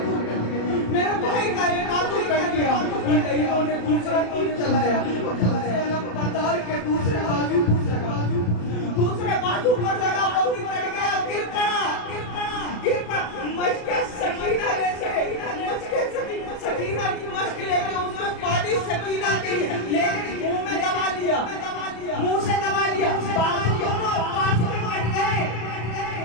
میرے بھائی کا ایک بازو کٹ گیا۔ ان لہیوں نے دوسرا تیر چلایا، بتاؤ کہ دوسرے بازو پر لگا، وہ بھی کٹ گیا، گر پڑا۔ مشق سکینہ لے کے، سکینہ کی مشق لے کے اس میں پانی سکینہ کے لیکن منہ میں دبا لیا، منہ سے دبا لیا، بازو دونوں پاس میں کٹ گئے،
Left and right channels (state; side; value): late; right; 34 ms